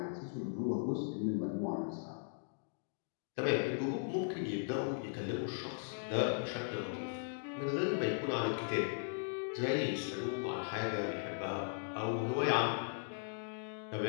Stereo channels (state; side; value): silent; right; digital silence